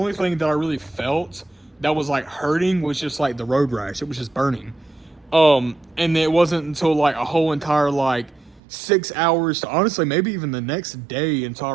thing that I really felt that was like hurting was just like the road rash. It was just burning. And it wasn't until like a whole entire like 6 hours to honestly maybe even the next day until I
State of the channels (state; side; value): drops out; left; at 8.6 s